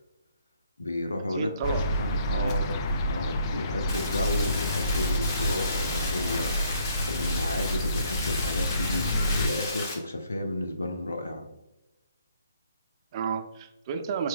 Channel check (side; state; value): both; inverted; correlation -0.66